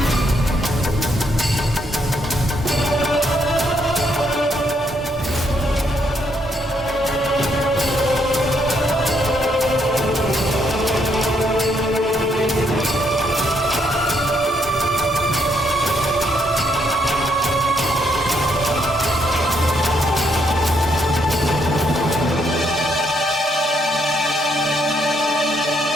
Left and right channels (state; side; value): normal; both; correlation 0.73